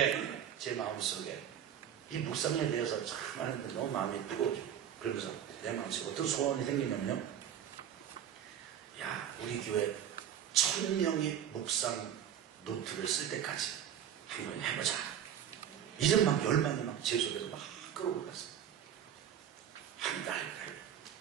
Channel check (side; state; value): left; quieter; 9.6 dB